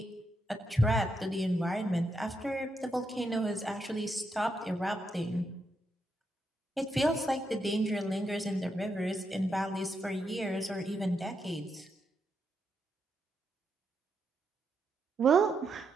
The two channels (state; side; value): normal; both; correlation 0.82